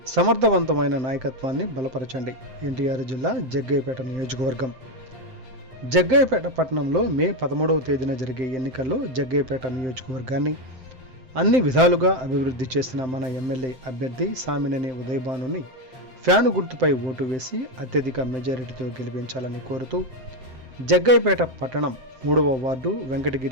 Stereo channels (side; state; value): left; late; 7.7 ms